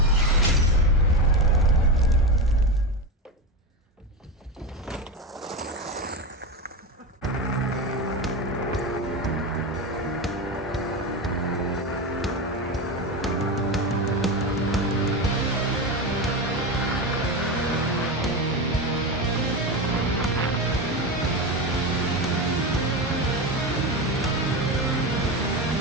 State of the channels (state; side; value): normal; both; correlation 0.19